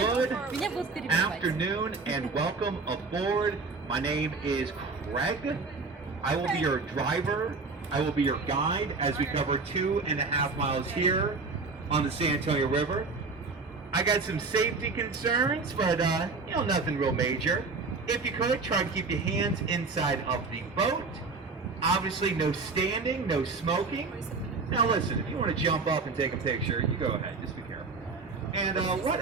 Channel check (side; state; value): left; quieter; 4.1 dB